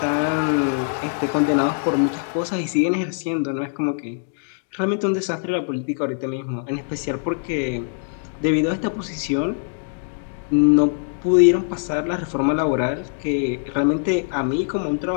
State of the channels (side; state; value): right; silent; digital silence